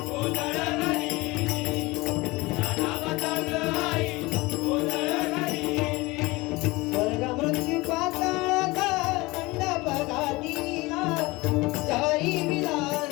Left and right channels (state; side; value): quieter; right; 22.3 dB